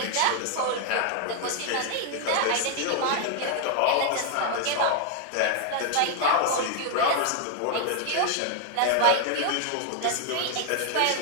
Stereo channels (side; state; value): both; different; correlation 0.00